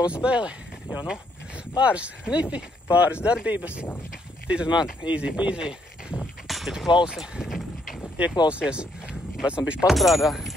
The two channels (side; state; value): both; normal; correlation 0.72